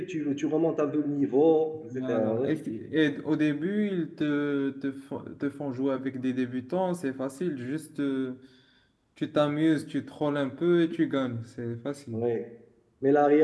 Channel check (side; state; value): both; identical; correlation 1.00